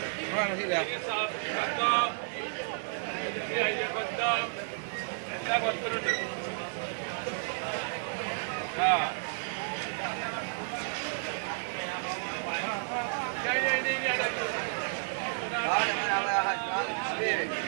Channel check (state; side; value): silent; left; digital silence